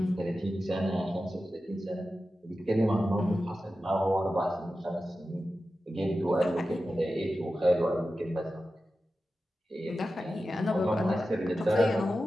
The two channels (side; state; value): both; normal; correlation 0.93